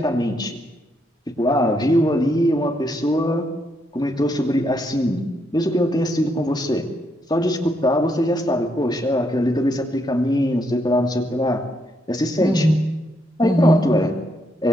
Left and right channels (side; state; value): both; normal; correlation 0.77